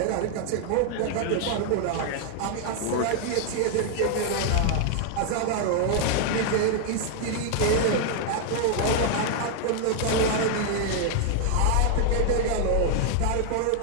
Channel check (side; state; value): both; different; correlation 0.00